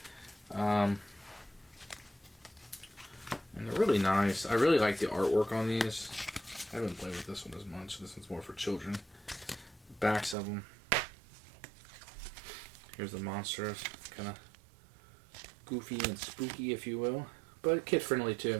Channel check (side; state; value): left; drops out; at 10.4 s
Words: And they're really nice. I really like the artwork on these. I haven't played with this one as much. This one's more for children. The backs of them. Here's the Monsters. Kind of goofy and spooky, if you will. But kid-friendly, too.